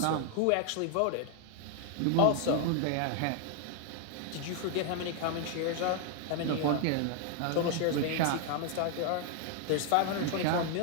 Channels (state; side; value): different; both; correlation 0.00